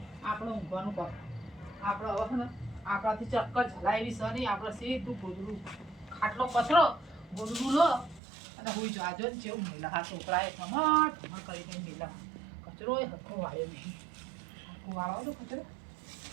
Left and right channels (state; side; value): drops out; left; at 8.2 s